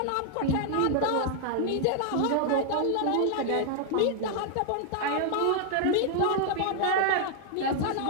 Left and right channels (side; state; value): both; different; correlation 0.00